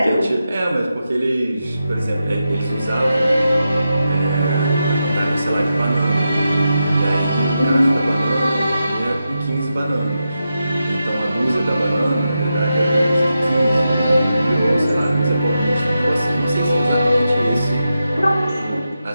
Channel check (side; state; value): both; inverted; correlation -0.88